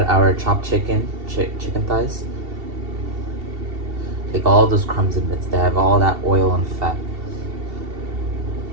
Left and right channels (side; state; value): left; late; 2.7 ms